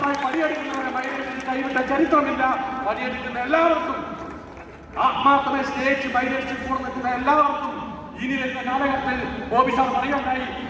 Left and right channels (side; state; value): both; identical; correlation 1.00